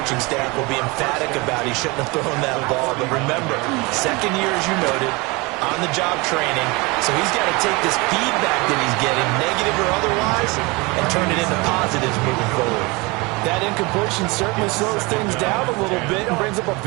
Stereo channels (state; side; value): quieter; left; 25.6 dB